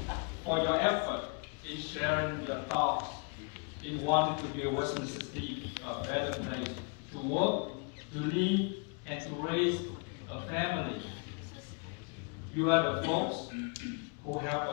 for your effort in sharing your thoughts in wanting to make Westminster City a better place to work, to live, and to raise a family. You are the folks who help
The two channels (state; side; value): quieter; right; 35.0 dB